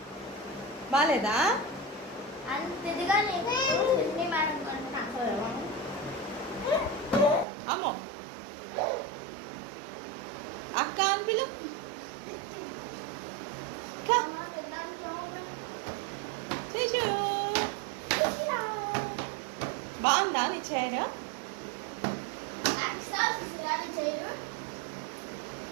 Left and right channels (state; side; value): drops out; left; at 7.5 s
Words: బాగాలేదా? అమ్మో అక్క అని పిలు. శిశు బాగుందా నీ చైర్?